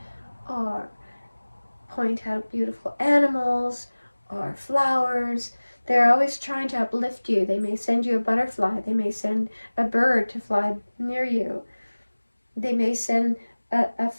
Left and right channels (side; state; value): both; inverted; correlation -1.00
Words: or point out beautiful animals or flowers. They're always trying to uplift you. They may send you a butterfly. They may send a bird to fly near you. They may send a